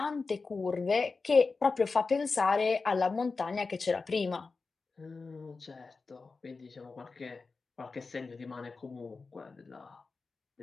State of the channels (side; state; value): right; quieter; 4.2 dB